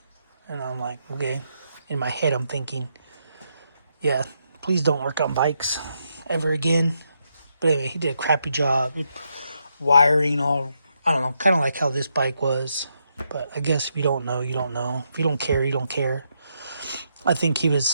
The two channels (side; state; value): both; inverted; correlation -0.80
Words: And I'm like, okay. In my head, I'm thinking, yeah, please don't work on bikes ever again. But anyway, he did a crappy job. Wiring all, I don't know, kind of like how this bike was. But I guess if you don't know, you don't know. If you don't care, you don't care. I think he